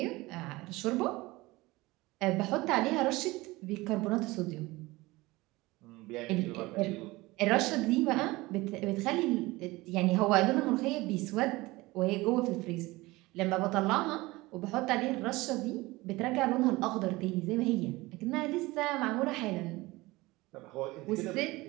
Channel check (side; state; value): left; quieter; 20.8 dB